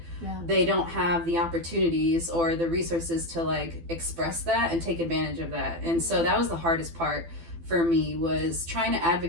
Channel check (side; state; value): left; late; 12 ms